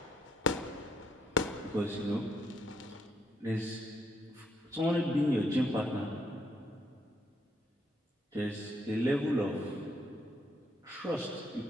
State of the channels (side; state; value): both; normal; correlation 0.73